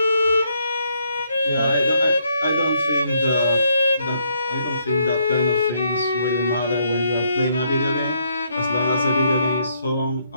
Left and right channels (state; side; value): inverted; both; correlation -0.72